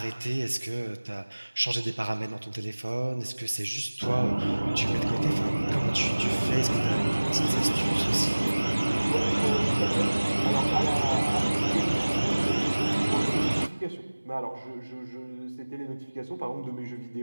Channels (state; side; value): inverted; both; correlation -1.00